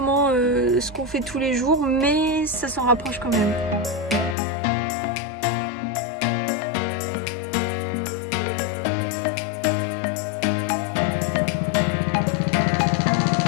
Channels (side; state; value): right; drops out; at 4.4 s